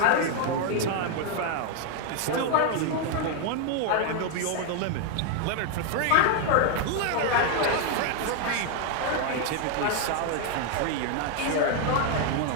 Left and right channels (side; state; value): both; different; correlation 0.01